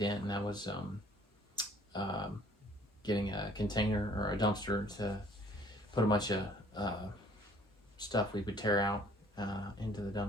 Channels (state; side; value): normal; both; correlation 0.57